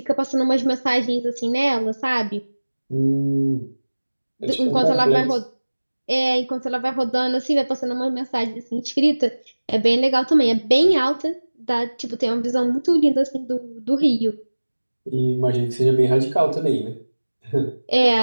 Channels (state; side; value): inverted; both; correlation -1.00